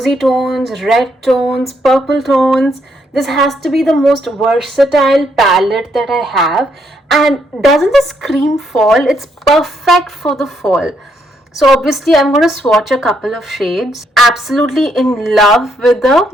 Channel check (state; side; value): normal; both; correlation 0.74